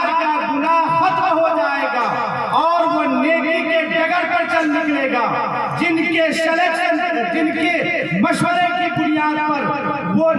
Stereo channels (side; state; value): both; identical; correlation 1.00